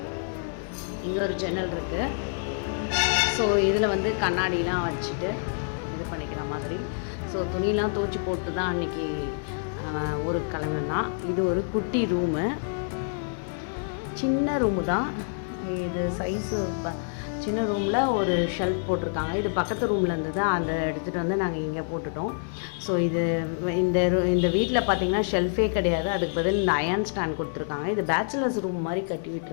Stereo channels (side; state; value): right; silent; digital silence